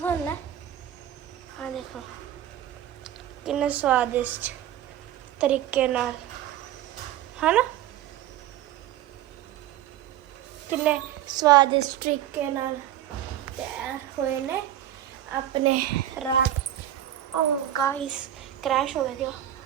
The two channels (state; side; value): quieter; left; 12.1 dB